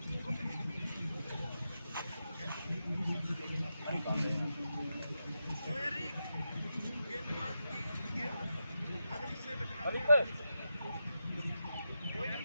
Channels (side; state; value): both; inverted; correlation -0.87